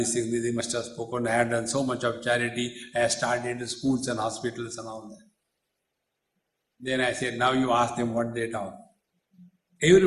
thing, they must have spoken, I have done so much of charity, I have started schools and hospitals and all that. Then I said, now you ask them what they talk.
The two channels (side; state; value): both; identical; correlation 1.00